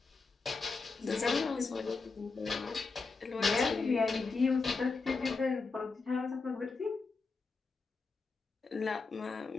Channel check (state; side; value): quieter; right; 4.2 dB